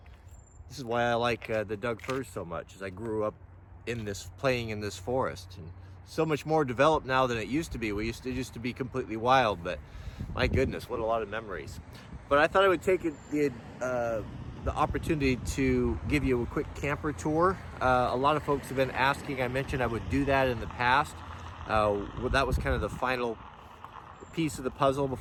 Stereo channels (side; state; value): both; identical; correlation 1.00